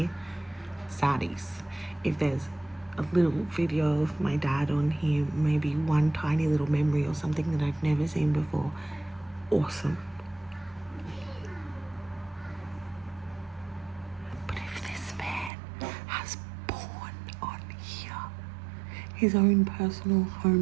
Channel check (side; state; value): left; drops out; at 15.5 s